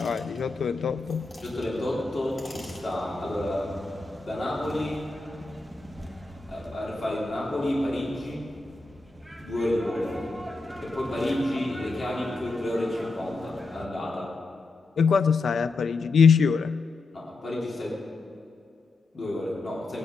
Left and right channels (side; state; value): right; quieter; 3.5 dB